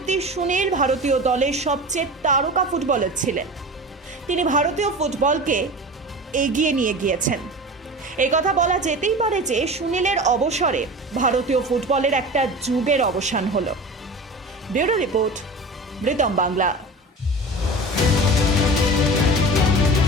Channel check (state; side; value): normal; both; correlation 0.34